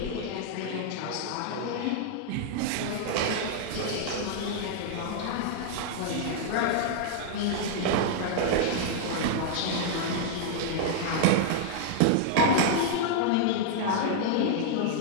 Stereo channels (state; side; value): different; both; correlation 0.00